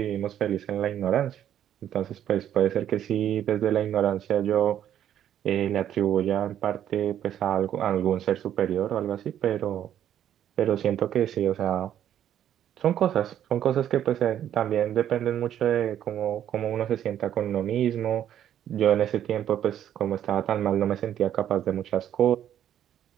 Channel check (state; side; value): quieter; left; 10.6 dB